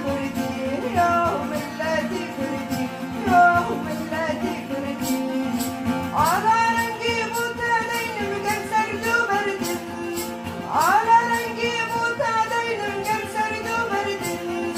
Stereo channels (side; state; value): both; identical; correlation 1.00